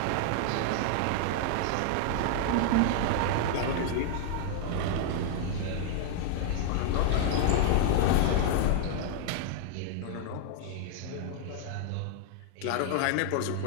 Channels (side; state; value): both; different; correlation -0.01